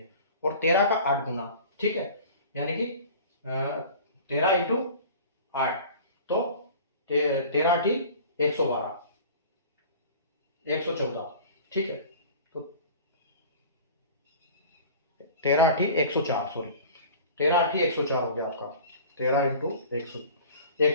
और 13 का 8 गुना, ठीक है, यानी कि 13 × 8, तो 13 × 8 112, 114, ठीक है। तो 13 × 8 104, सॉरी 13 × 8 104 हो गया आपका, 13 ×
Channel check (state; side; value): inverted; both; correlation -0.41